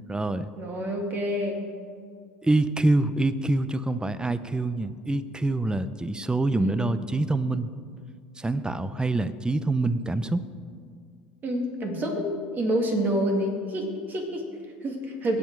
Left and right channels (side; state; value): both; normal; correlation 0.77